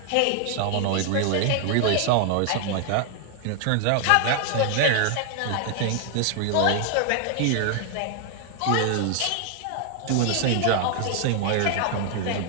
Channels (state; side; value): different; both; correlation 0.00